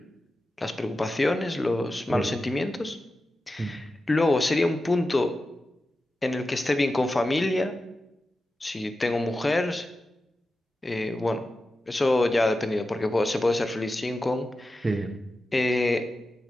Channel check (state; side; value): normal; both; correlation 0.92